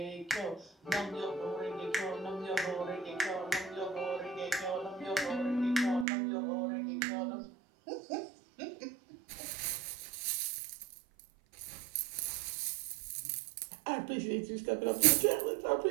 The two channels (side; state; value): left; drops out; at 6.1 s